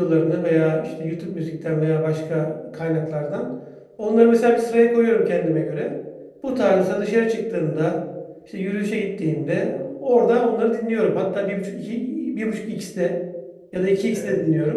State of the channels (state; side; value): identical; both; correlation 1.00